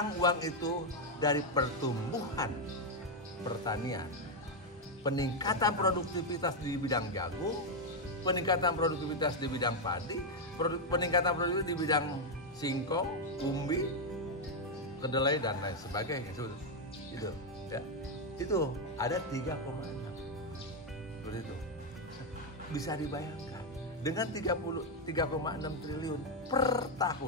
uang itu dari pertumbuhan pertanian, peningkatan produktivitas di bidang jagung, peningkatan produktivitas di bidang padi, peningkatan produktivitas di bidang singkong, umbi, kedelai dan lain sebagainya. Itu, ya. Itu ada 3,6. Seperti itu. Bisa dibayangkan dengan 3,6 triliun per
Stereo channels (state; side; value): normal; both; correlation 0.03